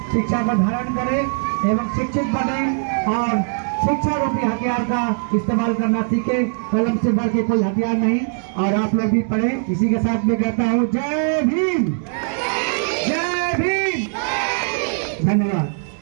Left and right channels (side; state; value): left; silent; 58 dB below the other